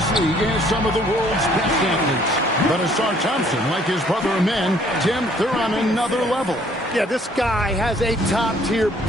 league has some of the world's best athletes. But Asar Thompson, like his brother Amen, Tim, they're on another level. Yeah, this guy has a top-tier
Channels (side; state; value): both; normal; correlation 0.61